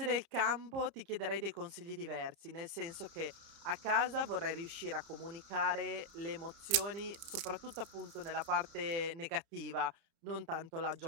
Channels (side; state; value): left; late; 31 ms